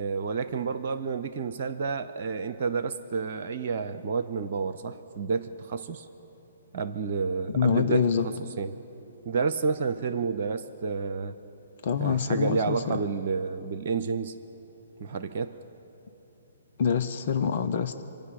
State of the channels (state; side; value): inverted; both; correlation -0.63